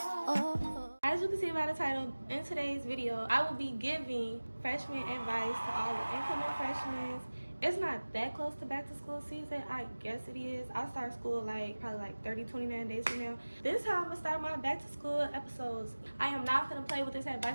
As you can see by the title, in today's video, I will be giving freshman advice to all the incoming freshmen. It's not that close to back to school season. I guess it is. I'll start school probably 29 days from now. This is how I'm gonna start my back to school episodes. I am not gonna play with this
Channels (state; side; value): inverted; both; correlation -1.00